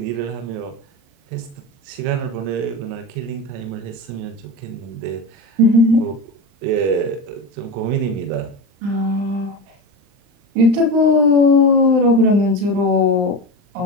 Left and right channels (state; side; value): late; left; 39 ms